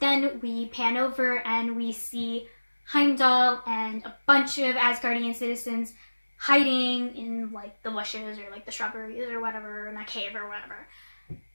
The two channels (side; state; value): both; inverted; correlation -1.00